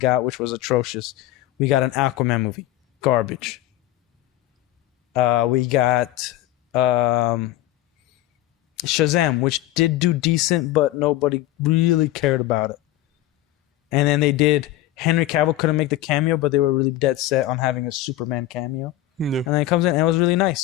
which was atrocious, we got an Aquaman movie, garbage. We got Shazam, which did do decent, but nobody really cared about it. And then they did, Henry Cavill couldn't make the cameo, but they were really dead set on having a Superman cameo. Yeah. And then it comes in, and it was really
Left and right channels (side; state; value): right; quieter; 14.6 dB